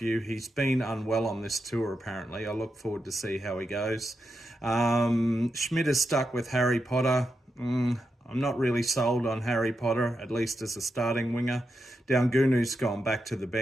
He's been unwell on this tour apparently. I look forward to see how he goes. Schmidt is stuck with Harry Potter. I'm not really sold on Harry Potter, at least as a starting winger. Daungunu's gone back to the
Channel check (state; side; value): normal; both; correlation 0.86